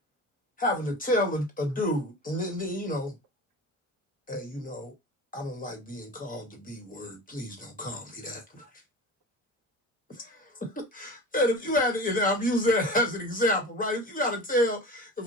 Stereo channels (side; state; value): both; normal; correlation 0.33